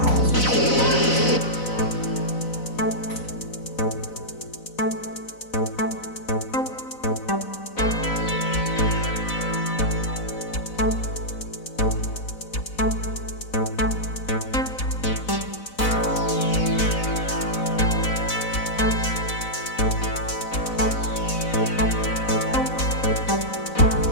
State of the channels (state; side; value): late; right; 4.0 ms